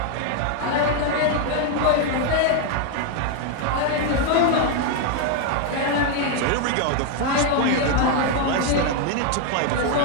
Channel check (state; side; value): different; both; correlation 0.00